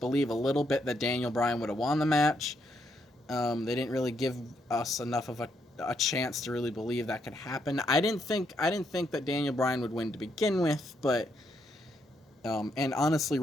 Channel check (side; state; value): both; normal; correlation 0.77